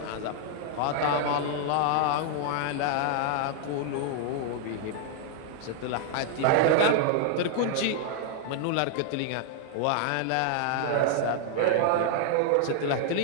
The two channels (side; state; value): both; different; correlation 0.00